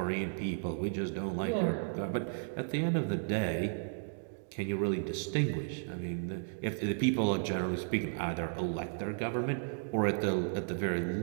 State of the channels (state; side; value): silent; left; digital silence